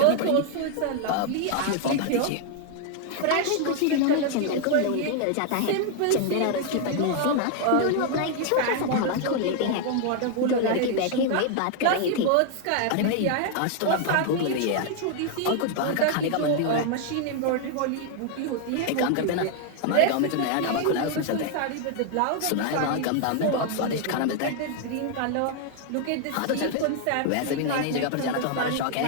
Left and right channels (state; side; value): different; both; correlation 0.00